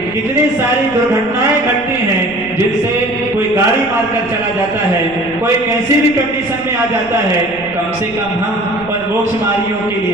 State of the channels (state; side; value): noise; right; rumble, 20 dB below the sound